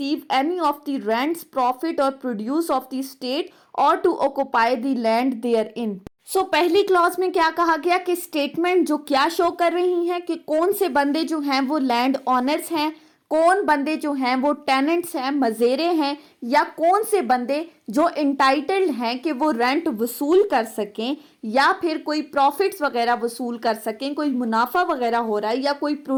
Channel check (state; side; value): identical; both; correlation 1.00